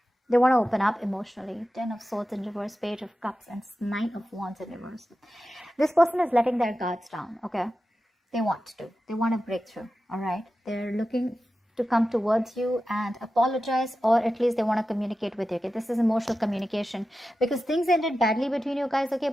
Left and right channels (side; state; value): both; normal; correlation 0.93